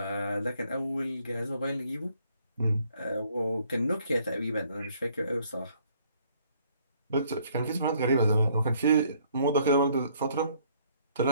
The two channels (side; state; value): both; inverted; correlation -0.64